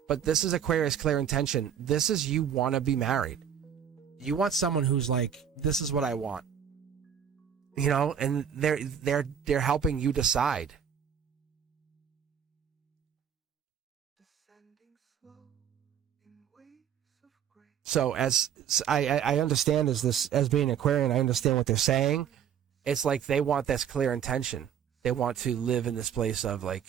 but this is Aquarius clear intention. This is, you want to be married. You want someone who's like, this is what I want, you know, and they're helping you decide. So as I understand as being Aquarian, I understand what they're saying. It's like they want this clear intention. They want to live in this place of like,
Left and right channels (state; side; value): quieter; left; 8.7 dB